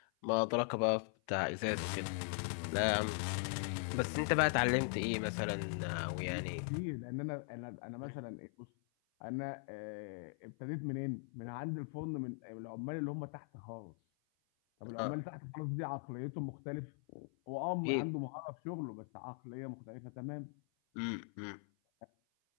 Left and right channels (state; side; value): silent; right; 51 dB below the other